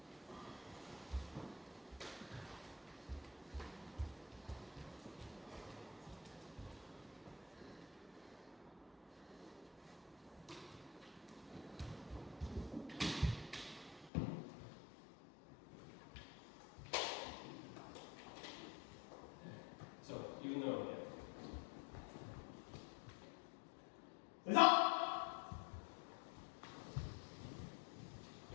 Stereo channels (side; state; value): right; drops out; at 14.1 s